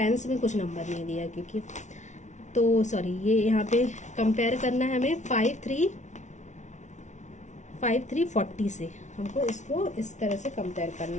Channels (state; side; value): late; right; 0.35 ms